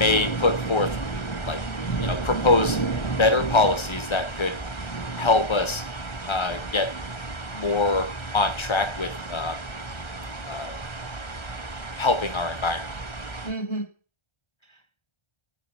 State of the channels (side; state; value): right; late; 1.3 ms